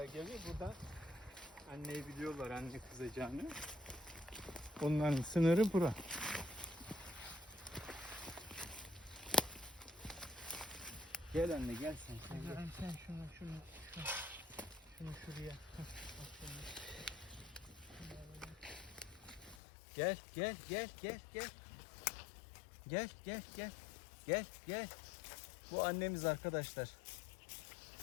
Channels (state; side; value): drops out; right; at 19.6 s